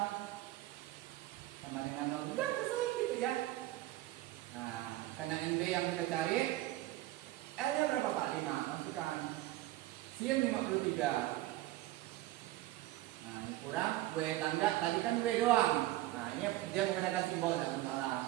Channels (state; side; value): quieter; left; 16.5 dB